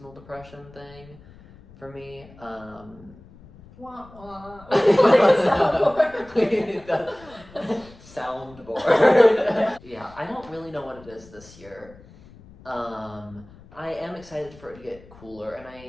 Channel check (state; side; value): noise; left; rumble, 22 dB below the sound